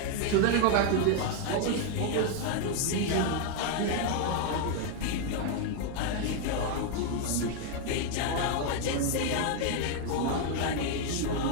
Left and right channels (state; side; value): different; both; correlation 0.01